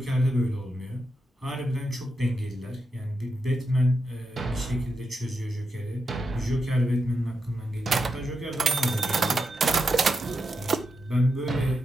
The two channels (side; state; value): both; normal; correlation 0.86